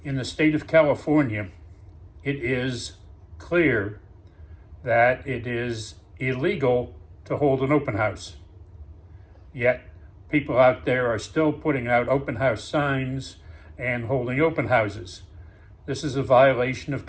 In the state of California, it is clear that it is illegal to hold an open house. Yet, people out there are still putting out open house signs and holding open houses. This is a violation of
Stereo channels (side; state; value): both; identical; correlation 1.00